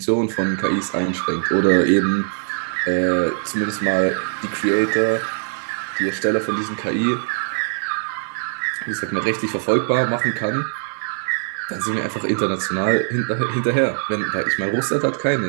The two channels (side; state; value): left; silent; 59 dB below the other